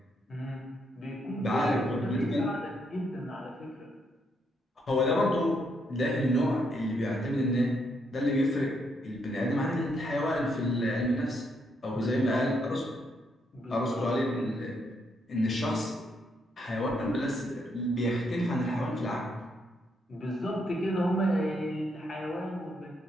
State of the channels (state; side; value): normal; both; correlation 0.76